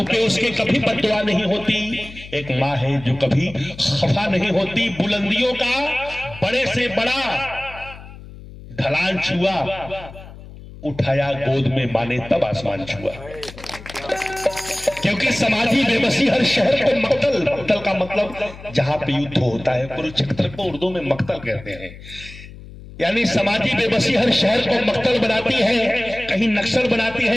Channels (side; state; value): left; noise; hum, 16 dB below the sound